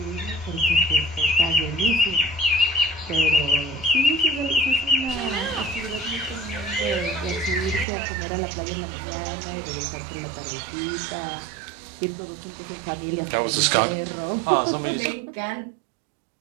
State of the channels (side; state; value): left; drops out; at 7.9 s